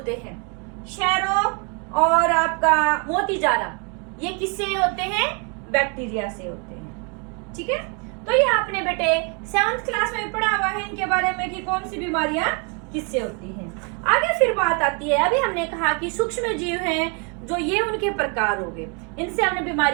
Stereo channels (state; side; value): quieter; left; 35.9 dB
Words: हैं, क्षय रोग और आपका मोतीजारा ये किससे होते हैं, बैक्टीरिया से होते हैं। ठीक है, तो ये आपने बेटे 7th क्लास में पढ़ा हुआ है इनके बारे में कि कौन सी बीमारियां किससे होती हैं। आगे फिर बात आती है, अभी हमने कहा कि सूक्ष्म जीव हैं जो ये उनके प्रकार हो गए, इनसे हमने